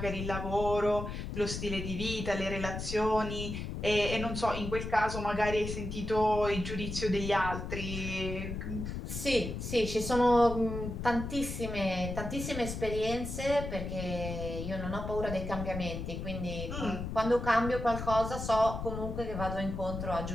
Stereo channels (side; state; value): left; noise; rumble, 6 dB below the sound